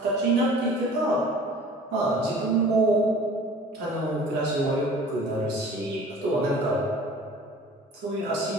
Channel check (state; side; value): normal; both; correlation 0.46